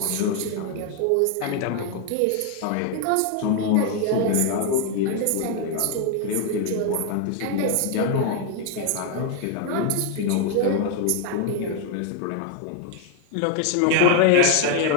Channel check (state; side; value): different; both; correlation 0.00